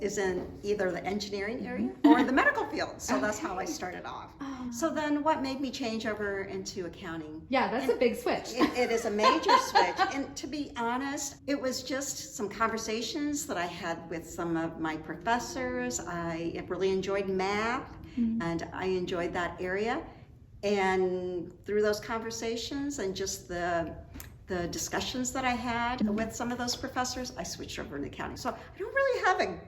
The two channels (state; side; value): identical; both; correlation 1.00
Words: in either the engineering area or the medical field. So that's how I started off. So then what made me change over into accounting? Yeah, that's a big switch. It is a major switch. And to be honest, it was just some conversations that I had with some of my professors. I really enjoyed math, and I enjoyed that area. And through those conversations and just the discussions that I had with some of those professors, I switched over into accounting. So I don't really have a